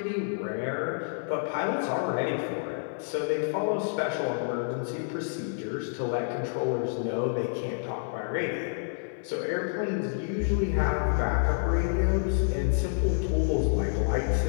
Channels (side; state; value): right; silent; 59 dB below the other